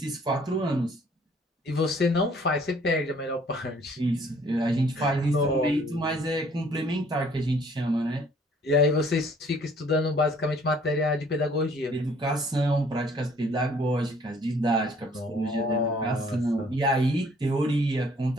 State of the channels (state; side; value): normal; both; correlation 0.59